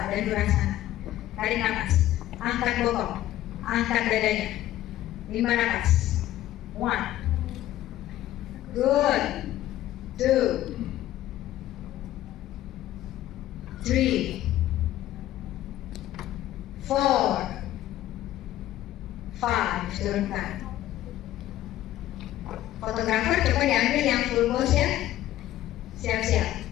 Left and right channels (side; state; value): right; quieter; 13.9 dB